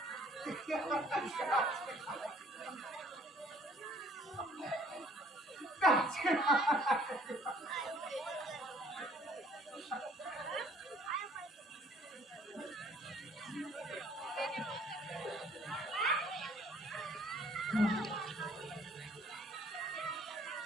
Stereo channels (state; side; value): normal; both; correlation 0.58